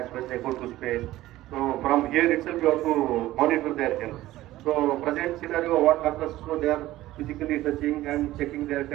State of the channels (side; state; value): left; quieter; 15.9 dB